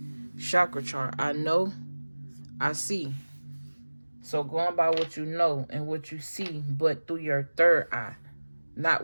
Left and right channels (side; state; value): both; inverted; correlation -1.00